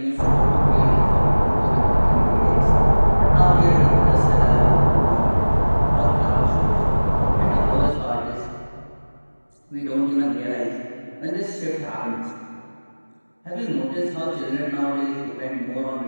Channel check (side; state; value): both; inverted; correlation -1.00